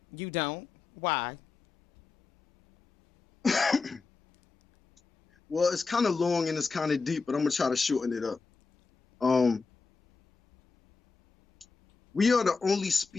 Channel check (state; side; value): quieter; right; 4.5 dB